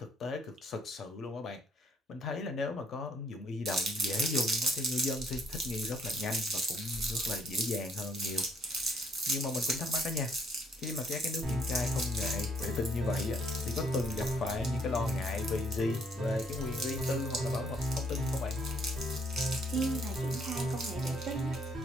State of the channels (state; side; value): normal; both; correlation 0.67